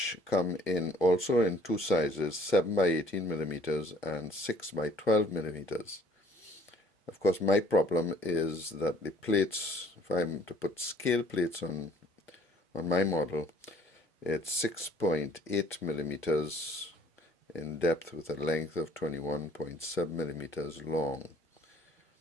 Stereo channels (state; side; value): normal; both; correlation 0.58